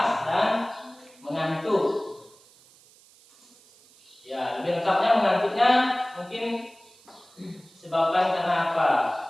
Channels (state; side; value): noise; right; hiss, 27 dB below the sound